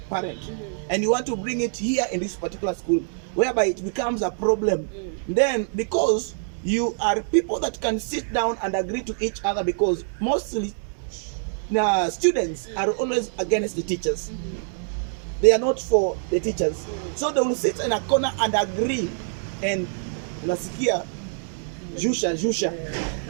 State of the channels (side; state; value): left; silent; digital silence